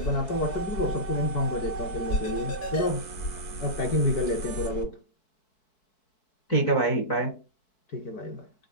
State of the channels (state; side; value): late; right; 4.6 ms